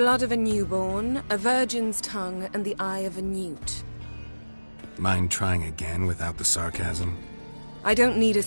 of a newborn, a virgin's tongue, and the eye of a newt. Mind trying again without the sarcasm? I don't need a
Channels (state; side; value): inverted; both; correlation -1.00